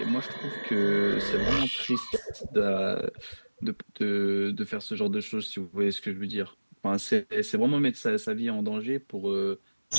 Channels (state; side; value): inverted; both; correlation -1.00